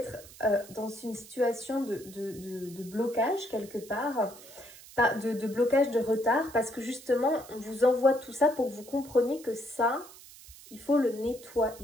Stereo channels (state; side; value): noise; right; hiss, 19 dB below the sound